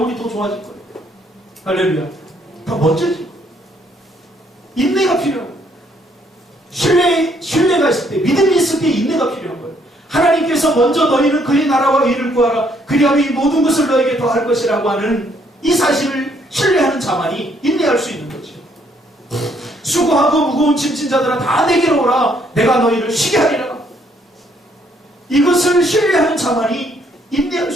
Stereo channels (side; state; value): both; normal; correlation 0.68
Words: 더 좋아질 거예요. 할렐루야. 더 멋져질 거예요. 인내가 필요하고 신뢰가 있을 때 믿음이 있을 때 인내가 필요한 거예요. 하나님께서 먼저 너희는 그의 나라와 의를 구하라 그리하면 이 모든 것을 너에게 더할 것이라고 하는 이 사실을 신뢰하는 자만이 인내할 수 있는 거죠. 수고하고 무거운 짐진 자들아 다 내게로 오라 내가 너희를 쉬게 하리라. 이것을 신뢰하는 자만이 인내할